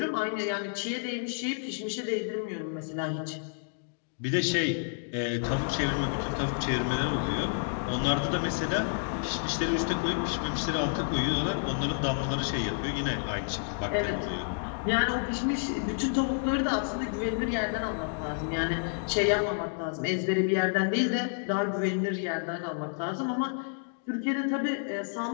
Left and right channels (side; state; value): right; silent; digital silence